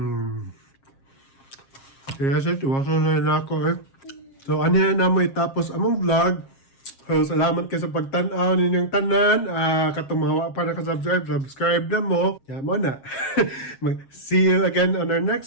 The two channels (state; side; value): late; right; 7.4 ms